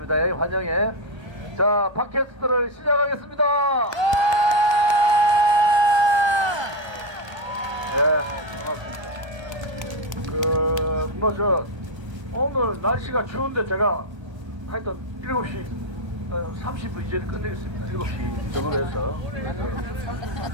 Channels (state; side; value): late; left; 1.3 ms